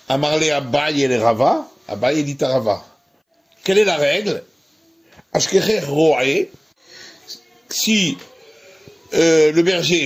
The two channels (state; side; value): identical; both; correlation 1.00